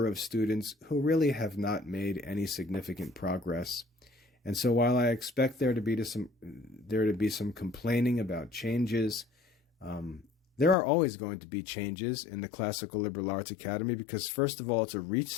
of students who really have not made any significant progress. And so while I expect there to be some complaining about changes, there are always going to be changes in the Classical Liberal Arts Academy because, first of all, it's a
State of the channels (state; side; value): drops out; right; at 10.8 s